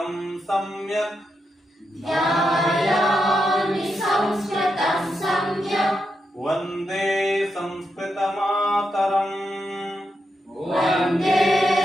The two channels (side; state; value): both; normal; correlation 0.85